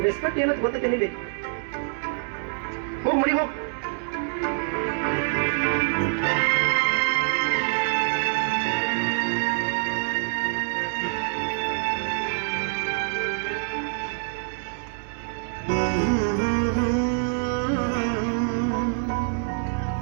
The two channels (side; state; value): left; silent; digital silence